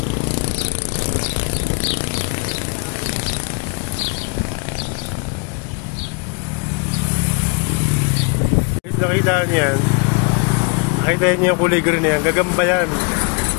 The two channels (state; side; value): quieter; right; 33.9 dB